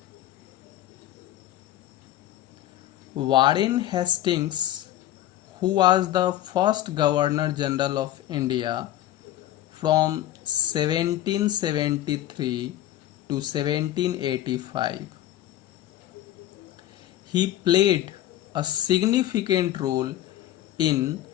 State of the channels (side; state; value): right; quieter; 13.4 dB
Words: Warren Hastings, who was the first Governor General of India from 1773 to 1785, he played a significant role in